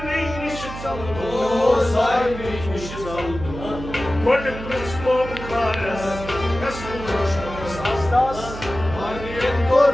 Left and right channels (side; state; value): right; noise; hum, 10 dB below the sound